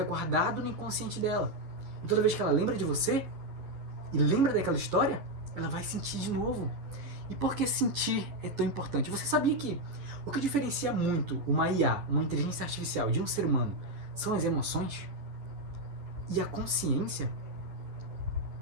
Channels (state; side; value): late; left; 10 ms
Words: guardado no inconsciente dela. E toda vez que ela lembra de você, e lembra daquela história, ela vai sentir de novo. E por que sentir é tão importante? Você sabia que o que diferencia muito uma IA, uma inteligência artificial, de um ser humano, são as emoções e a consciência?